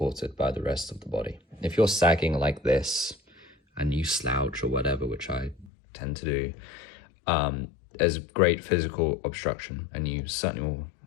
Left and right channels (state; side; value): drops out; right; at 5.7 s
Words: by the rest of the body. If you're sagging like this and you slouch or whatever, which I tend to do, there's great physical obstruction, and you certainly will